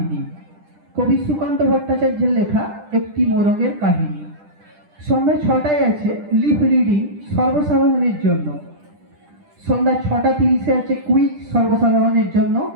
কবি সুকান্ত ভট্টাচার্যের লেখা একটি মোরগের কাহিনী। সন্ধ্যা 6টায় আছে লিপ রিডিং সর্বসাধারণের জন্য। সন্ধ্যা 6:30-এ আছে কুইজ সর্বসাধারণের জন্য।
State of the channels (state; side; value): late; left; 10 ms